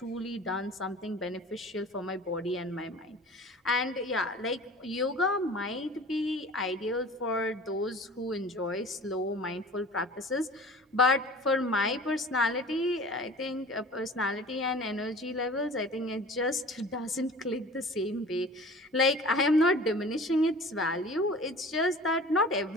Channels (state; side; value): normal; both; correlation 0.42